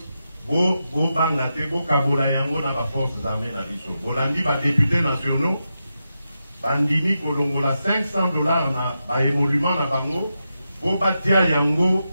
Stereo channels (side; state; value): both; inverted; correlation -0.88